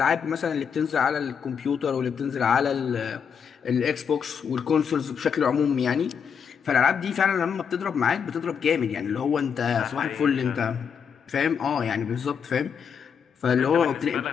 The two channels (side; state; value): right; quieter; 7.0 dB